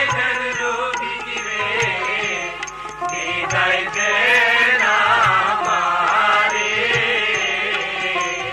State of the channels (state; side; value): identical; both; correlation 1.00